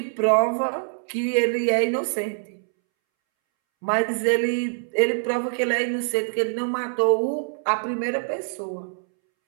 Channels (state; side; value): silent; left; 62 dB below the other